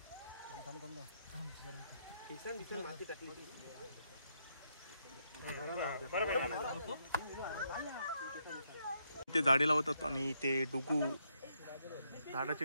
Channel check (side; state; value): both; inverted; correlation -0.77